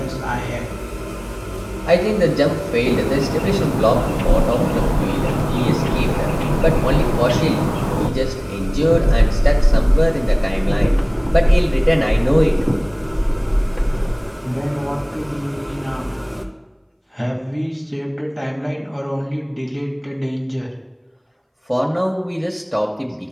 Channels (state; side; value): identical; both; correlation 1.00